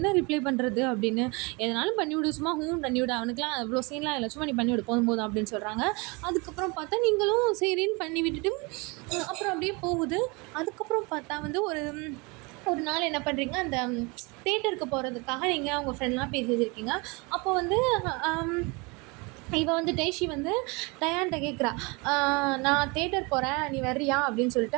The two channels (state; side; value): quieter; left; 28.1 dB